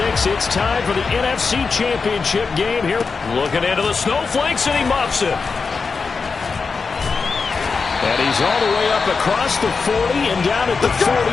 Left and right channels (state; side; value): quieter; right; 4.8 dB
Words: it's time for the NFC Championship game here. Looking into the snowflakes, and he muffs it. And he's all the way up across the 40 and down at the